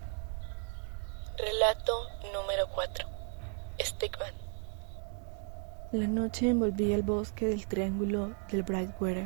Relato número 4. Stickman. La noche envolvía el bosque del triángulo del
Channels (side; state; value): left; quieter; 38.5 dB